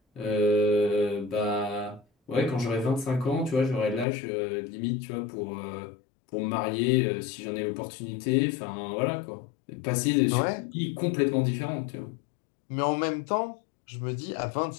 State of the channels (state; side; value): drops out; right; at 4.0 s